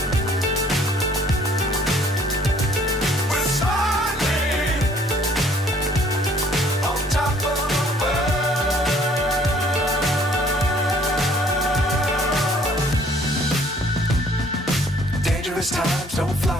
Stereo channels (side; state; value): both; normal; correlation 0.59